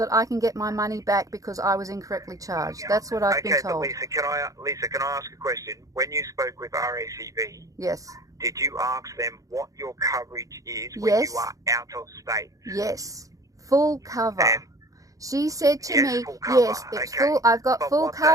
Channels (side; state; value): left; late; 0.16 ms